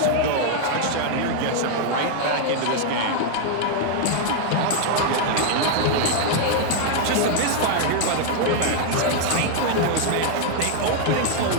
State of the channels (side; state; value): both; different; correlation 0.00